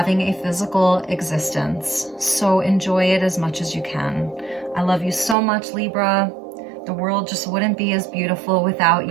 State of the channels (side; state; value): left; drops out; at 5.4 s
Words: a physical existence. So enjoy it as much as you can. I love you so much, Libra. The world just wouldn't be as beautiful